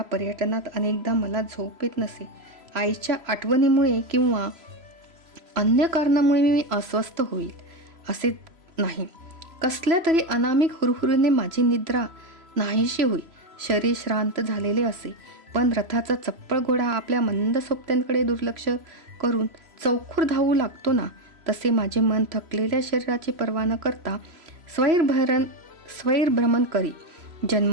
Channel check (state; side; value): late; left; 3.0 ms